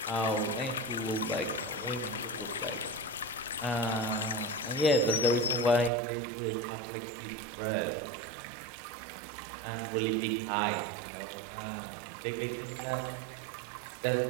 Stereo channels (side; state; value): left; drops out; at 5.9 s